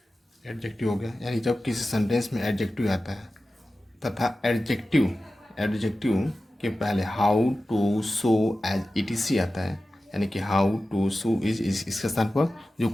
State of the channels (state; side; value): normal; both; correlation 0.94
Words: गया, यानी जब किसी सेंटेंस में एडजेक्टिव आता है तथा एडजेक्टिव के पहले how too so as E T C आता है, यानी कि हाउ टू सो इज इसके स्थान पर जो